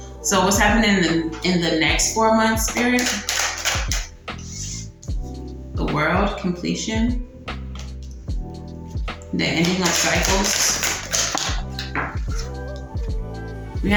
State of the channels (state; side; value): identical; both; correlation 1.00